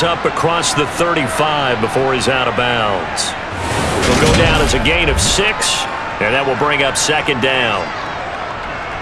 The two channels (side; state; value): both; identical; correlation 1.00